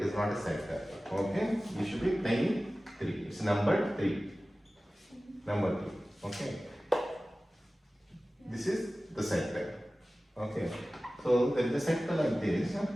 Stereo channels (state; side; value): normal; both; correlation 0.96